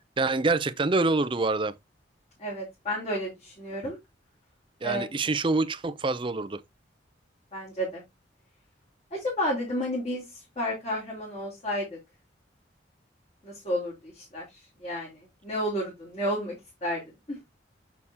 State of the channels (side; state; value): both; normal; correlation 0.33